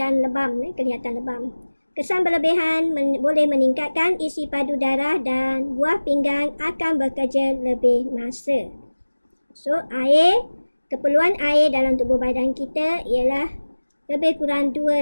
dan lebam, kelihatan lebam. Kesan berlebihan boleh meningkatkan isi padu darah dan buah pinggang akan bekerja lebih masa. So, keperluan air dalam tubuh badan kita ialah lebih kurang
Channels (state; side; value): inverted; both; correlation -1.00